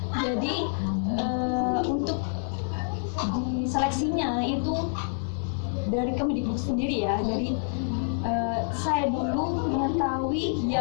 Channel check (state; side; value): silent; right; digital silence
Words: Jadi untuk di seleksinya itu dari Kemendikbud sendiri ya. Jadi saya dulu mengetahui